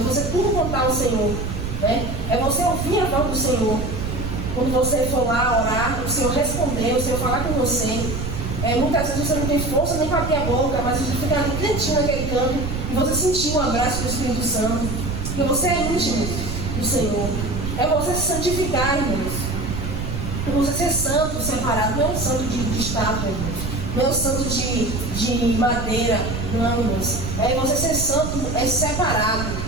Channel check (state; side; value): noise; right; rumble, 4 dB below the sound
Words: tudo contar ao Senhor. Né? É você ouvir a voz do Senhor. Quando você for lá orar, o Senhor responder, o Senhor falar com você. Muitas vezes você não tem força nem para abrir a boca, mas você fica ali quietinho naquele canto e você sentir o abraço do Espírito Santo. Porque você é íntimo do Senhor. É você se santificar, irmãos. É você ser santo, separado. Não é um santo de estátua, irmãos. Não é um santo de madeira, não, irmãos. É você ser santo, separado.